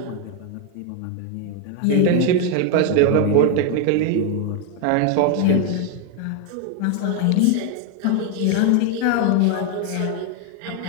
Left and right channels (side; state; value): both; different; correlation 0.01